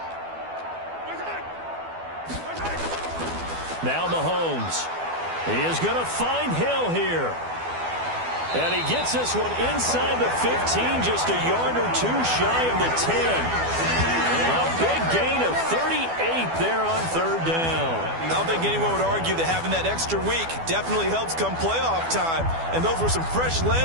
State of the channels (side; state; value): left; late; 12 ms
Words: Now Mahomes. He is going to find Hill here. And he gets this one inside the 15, just a yard or 2 shy of the 10. A big gain of 38 there on 3rd down. I don't think anyone would argue that having that extra week definitely helps come playoff time. And those were some fresh